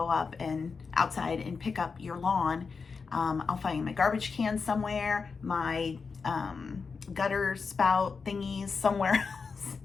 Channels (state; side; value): quieter; right; 5.0 dB